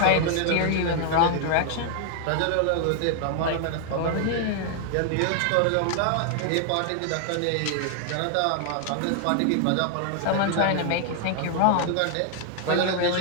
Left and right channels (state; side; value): different; both; correlation 0.00